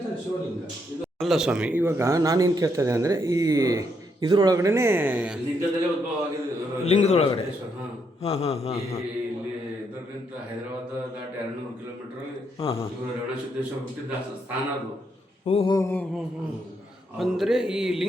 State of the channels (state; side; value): normal; both; correlation 0.77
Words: ತಾನೆ ಶಿವಲಿಂಗ. ಅಲ್ಲ ಸ್ವಾಮಿ, ಇವಾಗ ನಾನೇನು ಕೇಳ್ತಾ ಇದ್ದೆ ಅಂದರೆ ಈ ಇದರೊಳಗಡೆ ಲಿಂಗದಲ್ಲೇ ಉದ್ಭವ ಆಗಿದೆ, ಲಿಂಗದೊಳಗಡೆ. ಹಾಂ ಹಾಂ ಹಾಂ ಹಾಂ ಹಾಂ ಇಲ್ಲಿ ಇದರಿಂದ ಹೈದರಾಬಾದ್ ದಾಟಿ 200 ಕಿಲೋಮೀಟರ್ ಹಾಂ ಹಾಂ ಇವರು ರೇವಣಸಿದ್ದೇಶ್ವರ ಹುಟ್ಟಿದ ಸ್ಥಾನ ಅದು. ಓಹೋ ಹೋ ಹೋ ಹೋ. ಅಂದರೆ ಈ